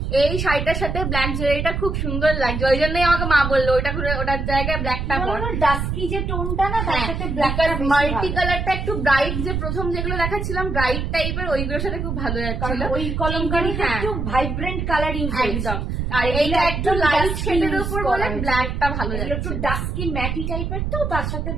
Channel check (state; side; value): noise; right; rumble, 2 dB below the sound